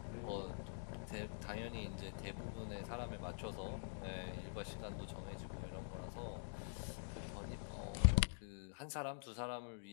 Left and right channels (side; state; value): right; silent; digital silence